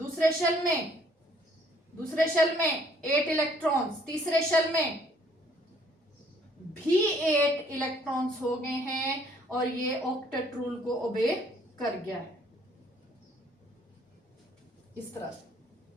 शेल में 8 इलेक्ट्रॉन्स, तीसरे शेल में भी 8 इलेक्ट्रॉन्स हो गए हैं और ये ऑक्टेट रूल को ओबे कर गया है इस तरह से।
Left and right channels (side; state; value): both; normal; correlation 0.62